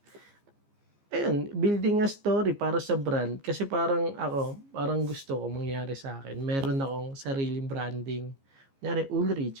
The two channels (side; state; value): left; late; 15 ms